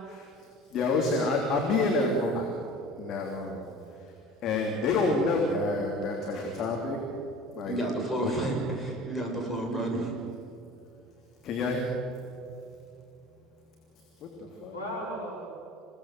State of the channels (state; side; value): normal; both; correlation 0.42